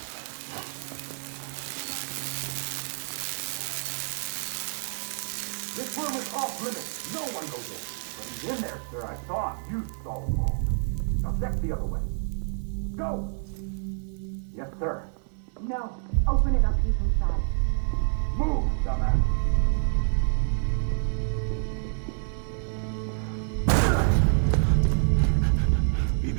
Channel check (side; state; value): left; silent; digital silence